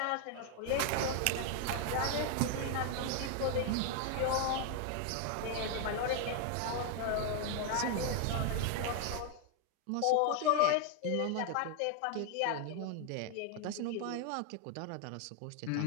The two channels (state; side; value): different; both; correlation 0.00